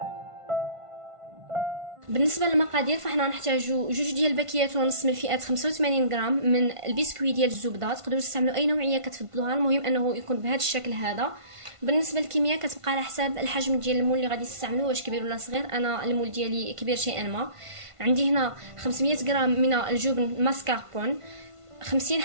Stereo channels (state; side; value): late; left; 1.5 ms